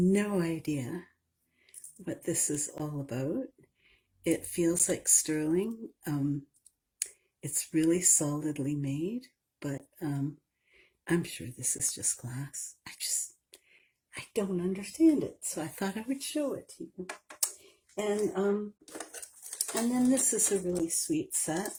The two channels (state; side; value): identical; both; correlation 1.00